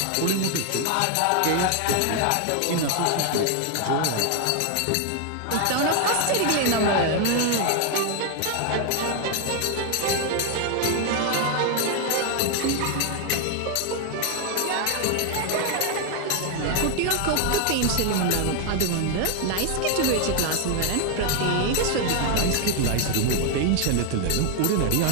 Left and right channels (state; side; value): different; both; correlation 0.00